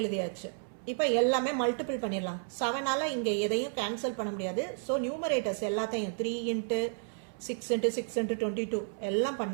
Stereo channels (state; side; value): silent; left; 57 dB below the other